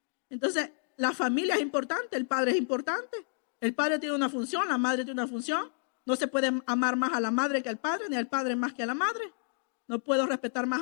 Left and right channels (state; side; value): silent; right; digital silence